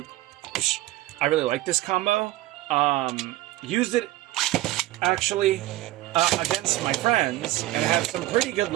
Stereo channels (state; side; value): quieter; left; 16.9 dB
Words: like this combo. Used it actually against my friends and have some pretty good